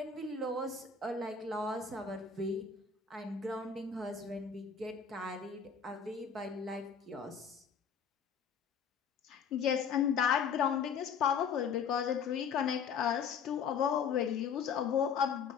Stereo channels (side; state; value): right; quieter; 6.4 dB